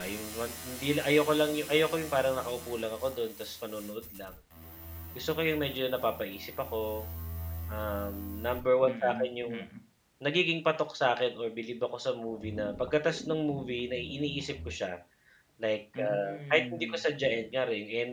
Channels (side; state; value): both; identical; correlation 1.00